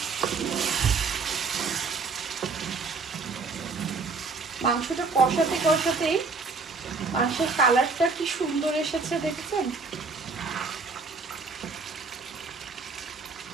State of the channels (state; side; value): quieter; left; 4.4 dB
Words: মাংসটা কষাতে কষাতেই মাংসের কালারটা কি সুন্দর এসেছে দেখছেন।